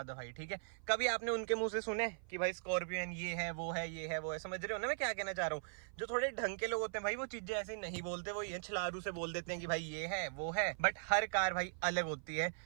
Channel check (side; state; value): left; silent; 51 dB below the other